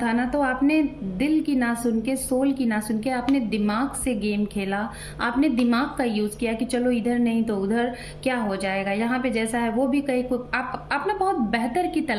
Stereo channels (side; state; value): both; identical; correlation 1.00